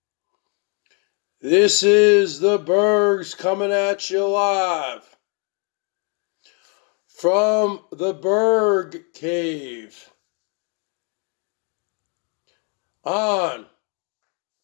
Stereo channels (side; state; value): right; quieter; 36.8 dB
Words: This is the Bergs coming at you live from the Berg Cave on